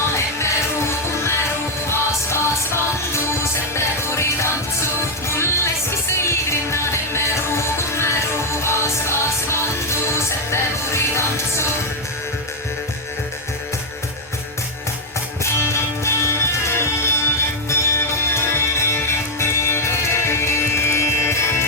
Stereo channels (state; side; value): noise; right; hum, 25 dB below the sound